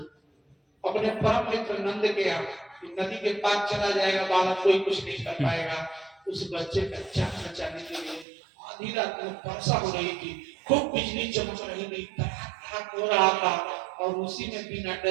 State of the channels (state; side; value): drops out; left; at 8.2 s